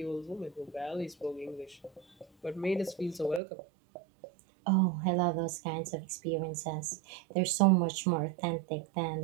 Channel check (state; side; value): drops out; left; at 3.4 s